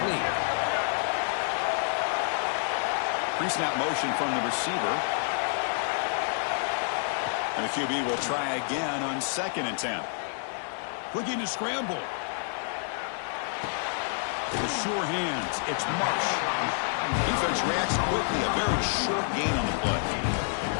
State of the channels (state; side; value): silent; right; digital silence